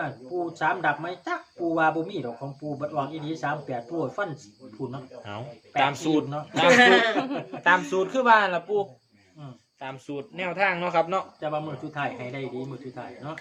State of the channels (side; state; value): both; identical; correlation 1.00